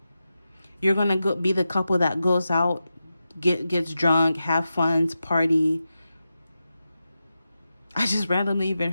You're going to be the couple that goes out, gets drunk, have fun, party. I just randomly even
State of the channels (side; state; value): both; inverted; correlation -0.91